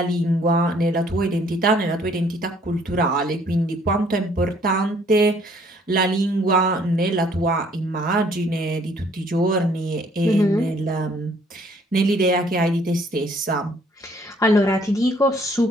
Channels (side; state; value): both; normal; correlation 0.61